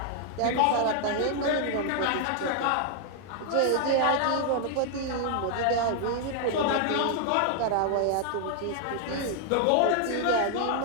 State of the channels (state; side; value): different; both; correlation 0.00